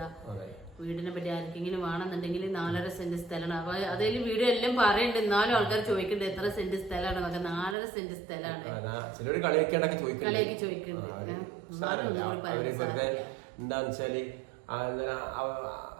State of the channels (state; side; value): drops out; left; at 7.8 s